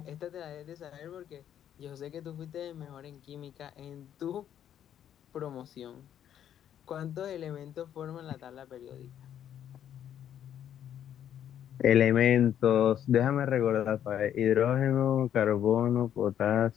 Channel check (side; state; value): right; quieter; 10.1 dB